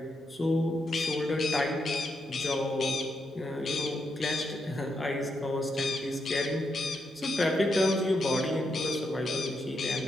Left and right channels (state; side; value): normal; both; correlation 0.81